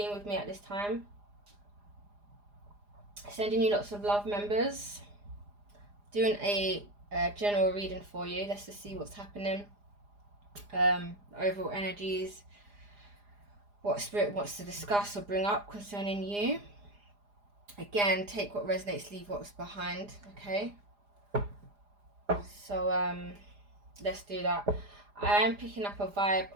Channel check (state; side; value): late; left; 4.9 ms